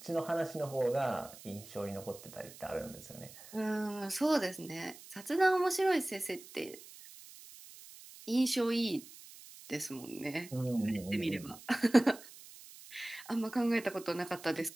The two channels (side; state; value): right; noise; hiss, 18 dB below the sound